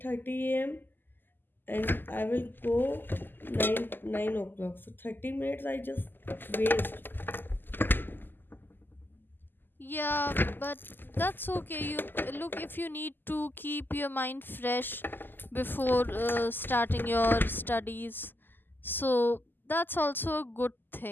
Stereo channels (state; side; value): late; right; 0.092 ms